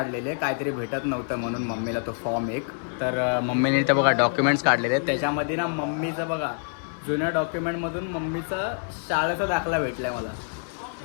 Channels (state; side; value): silent; right; digital silence